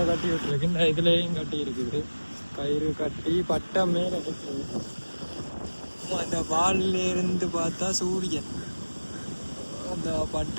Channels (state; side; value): inverted; both; correlation -1.00